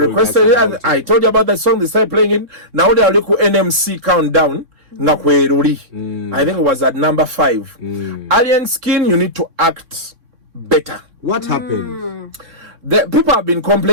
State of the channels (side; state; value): left; late; 3.6 ms